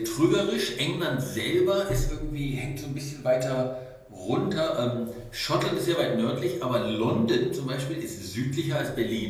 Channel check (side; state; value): both; identical; correlation 1.00